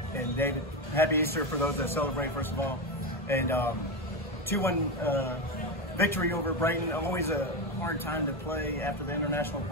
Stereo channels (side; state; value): both; normal; correlation 0.14